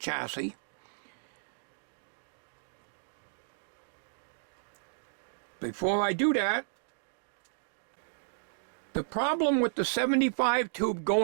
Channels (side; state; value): left; silent; digital silence